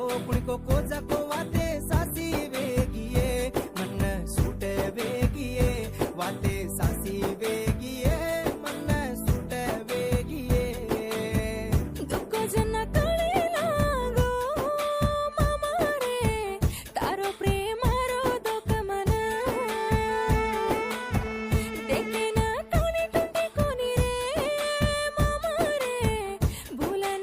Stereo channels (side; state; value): both; identical; correlation 1.00